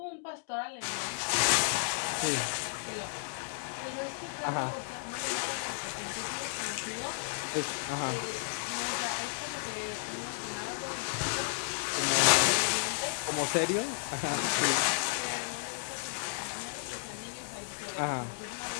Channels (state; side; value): silent; right; digital silence